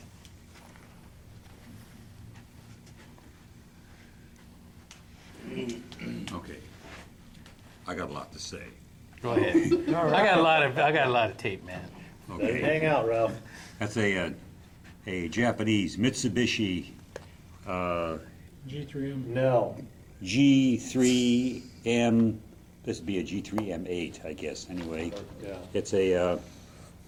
Okay. I got a lot to say. Go ahead. I got a lot of tape, man. Okay. Hang out, Ralph. That's a Japanese Mitsubishi G3M. Nell. G3M. This would be a G3M8, I guess, anyway. Yeah. It's a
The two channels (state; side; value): identical; both; correlation 1.00